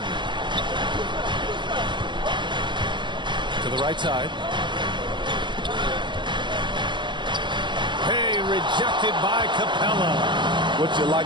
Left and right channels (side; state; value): left; late; 0.23 ms